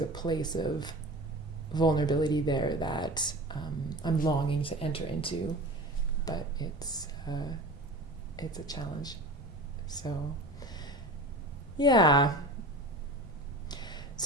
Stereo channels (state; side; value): normal; both; correlation 0.35